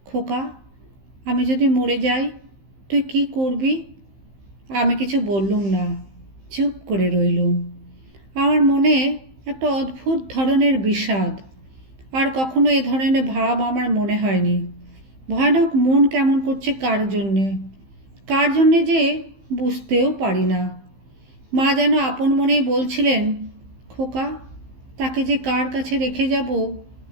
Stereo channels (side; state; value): left; late; 15 ms